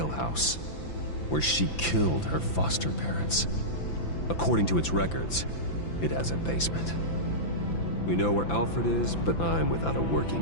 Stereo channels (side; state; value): right; late; 5.9 ms